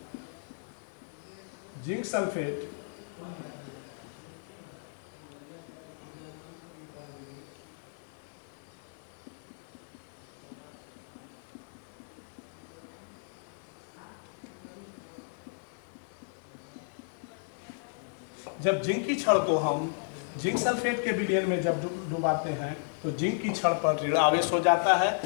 जिंक सल्फेट जब जिंक की छड़ को हम जिंक सल्फेट के विलयन में जब डुबाते हैं तो जिंक की छड़ पर ऋण आवेश हो जाता है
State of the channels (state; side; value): silent; right; digital silence